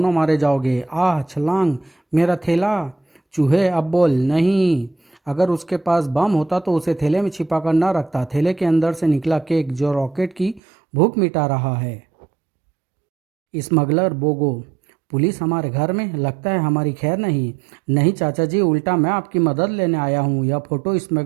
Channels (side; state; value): left; drops out; at 10.6 s